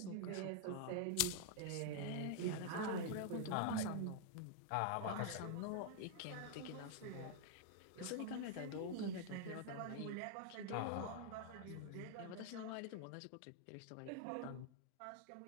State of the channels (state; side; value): different; both; correlation 0.00